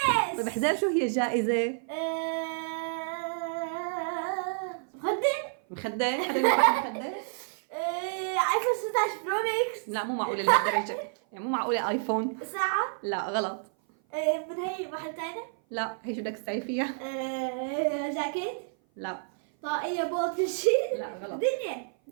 طيب احذر شو هي الجائزة؟ مخدة؟ مخدة؟ حدا بيعرف مخدة؟ ايفون 16 برو ماكس. لا مو معقولة لهالدرجة، يعني مو معقولة ايفون. ساعة. لا غلط. من هي محل تاني. لا هي شو بدك تسوي فيها؟ جاكيت. لا طاقية بوت كل شيء. لا غلط. دنيا.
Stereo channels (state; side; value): silent; left; 55 dB below the other